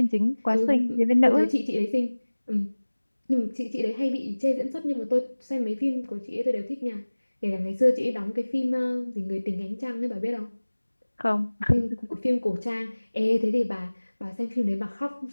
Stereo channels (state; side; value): inverted; both; correlation -1.00